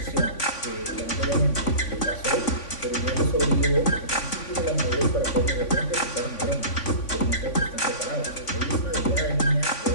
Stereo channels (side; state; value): right; late; 3.5 ms